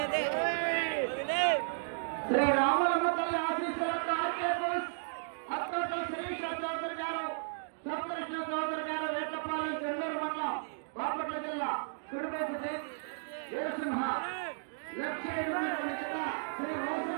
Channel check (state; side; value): silent; left; digital silence